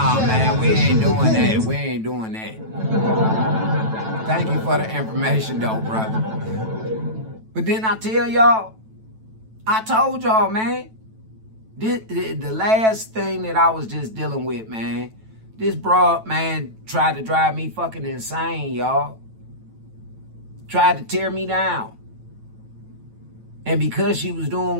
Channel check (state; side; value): late; left; 9.1 ms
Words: man, we ain't doing that. We ain't doing that. Thank you for the information, though, brother. But then I tell y'all, I told y'all, man, the last thing that I was just dealing with, man, this broad, man, tried to drive me fucking insane, y'all. Tried to tear me down. And because she was doing